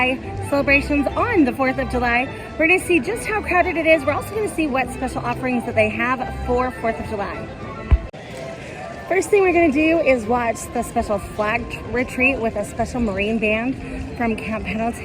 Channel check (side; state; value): both; identical; correlation 1.00